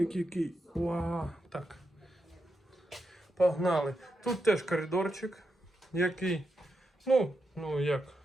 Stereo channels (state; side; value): normal; both; correlation 0.85